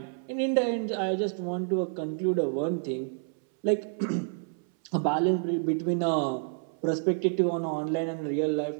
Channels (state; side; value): silent; left; 59 dB below the other